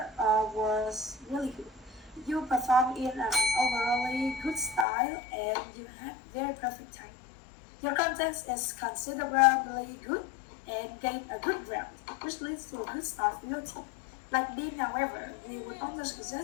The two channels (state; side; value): drops out; right; at 4.9 s